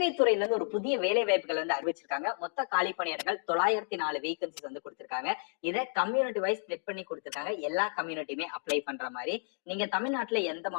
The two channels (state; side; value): silent; right; 57 dB below the other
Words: துறையில இருந்து ஒரு புதிய வேலை வாய்ப்புகள் வந்து அறிவிச்சிருக்காங்க. மொத்த காலி பணியிடங்கள் 904 வேகன்சிஸ் வந்து கொடுத்திருக்காங்க. இதை கம்யூனிட்டி வைஸ் ஸ்பிளிட் பண்ணி கொடுத்திருக்காங்க. எல்லா கம்யூனிட்டியுமே அப்ளை பண்ற மாதிரி. நீங்க தமிழ்நாட்டுல எந்த